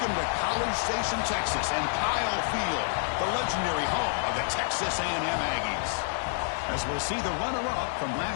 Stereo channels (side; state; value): right; silent; digital silence